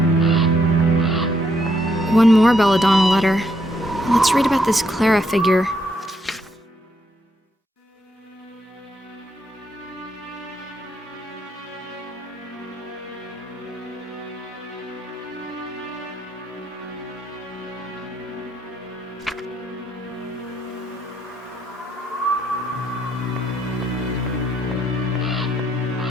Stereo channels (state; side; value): normal; both; correlation 0.74